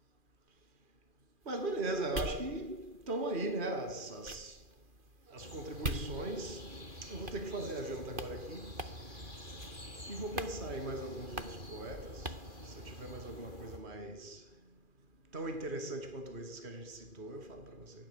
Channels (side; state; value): left; late; 2.4 ms